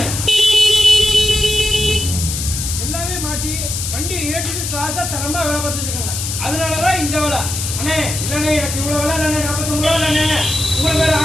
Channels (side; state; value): left; noise; hiss, 4 dB below the sound